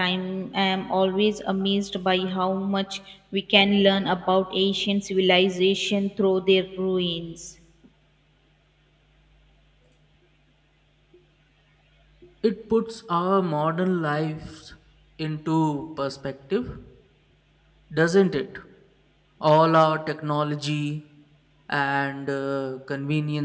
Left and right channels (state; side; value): identical; both; correlation 1.00